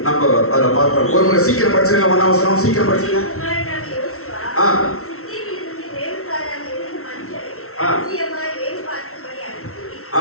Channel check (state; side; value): late; right; 0.63 ms